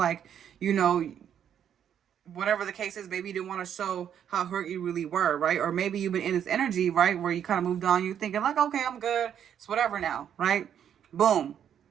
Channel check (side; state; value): left; quieter; 9.1 dB